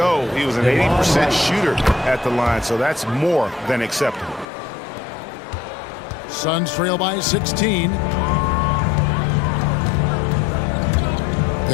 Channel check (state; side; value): drops out; right; at 4.5 s